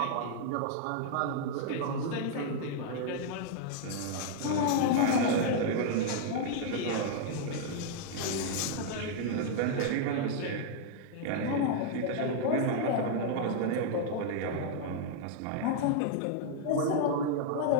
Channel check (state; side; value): different; both; correlation -0.01